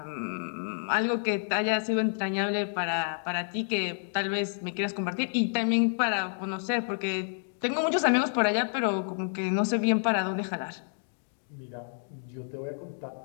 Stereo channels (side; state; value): right; silent; digital silence